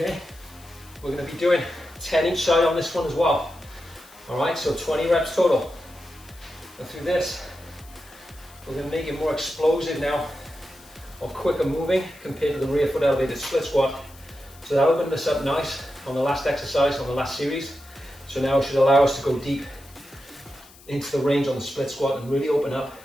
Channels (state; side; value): noise; left; hiss, 23 dB below the sound